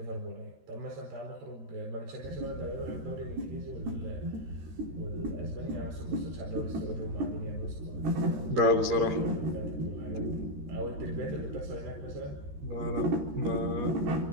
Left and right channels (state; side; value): late; left; 13 ms